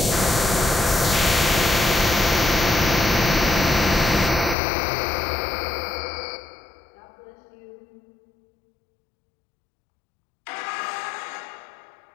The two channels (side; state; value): right; drops out; at 4.5 s